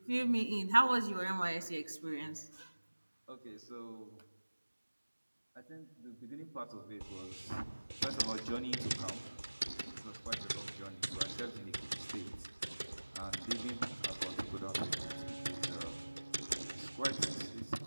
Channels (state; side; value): inverted; both; correlation -1.00